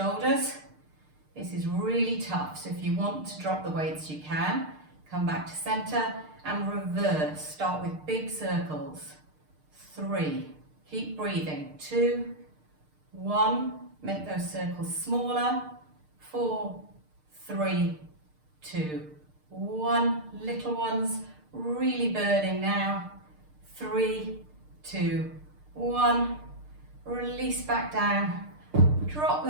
This is really tough, so if you want to drop the weights, you can. Come back to center and reverse. Start with big circles. 3, keep breathing. 2, 1, make those circles smaller. 4, 3, 2, 1, little ones, really burning now. 3, 2, 1, release back down, drop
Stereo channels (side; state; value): left; late; 6.6 ms